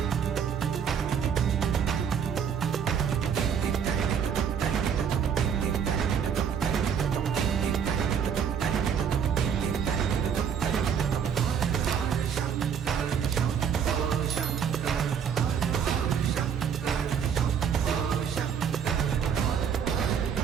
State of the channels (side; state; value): left; quieter; 7.6 dB